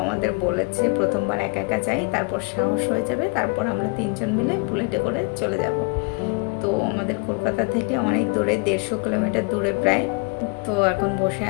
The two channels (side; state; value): right; quieter; 33.4 dB